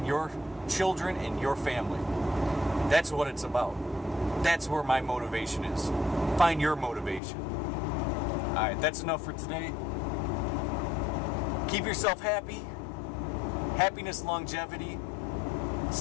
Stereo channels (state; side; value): drops out; right; at 7.2 s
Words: your children and your family. That's what it's about. That's where my motivation is. Find your motivation. Alright, that's enough for today. Keep yourself happy. Happiness, longevity.